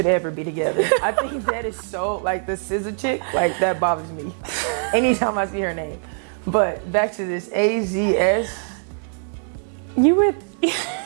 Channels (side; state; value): left; silent; digital silence